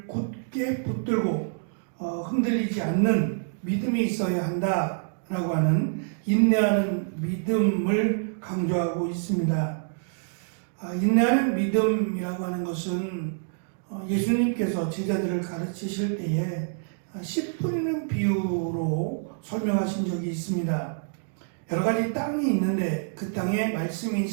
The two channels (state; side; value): silent; left; digital silence